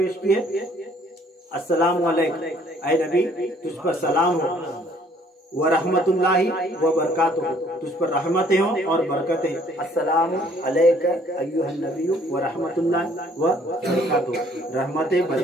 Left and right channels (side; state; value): both; normal; correlation 0.61